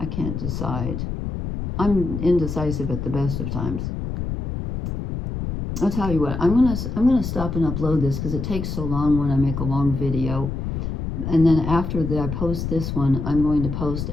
can't decide. I'm indecisive at the best of times. I'll tell you what, I'm gonna stop and upload this because it takes so long when I make a long video. And then after that I post this one, I'm going to post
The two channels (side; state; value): left; noise; rumble, 4 dB below the sound